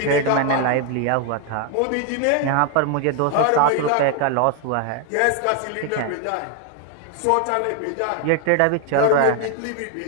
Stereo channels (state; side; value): different; both; correlation 0.01